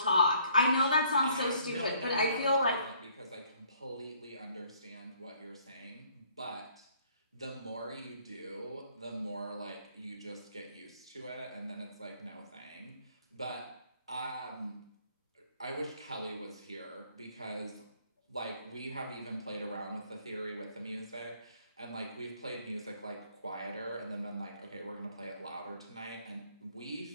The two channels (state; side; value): inverted; both; correlation -0.62